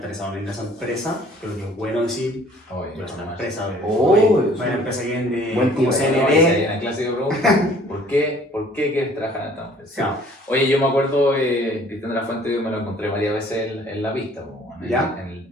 en esa empresa, creo que es bueno decir, yo soy una empresa, una empresa que vende como CND. La clásica pregunta, ¿por qué quieres trabajar en esta empresa? No. Oye, yo me acuerdo, Cristian de la Fuente, yo me lo encontré varias veces en la pista,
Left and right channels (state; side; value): normal; both; correlation 0.55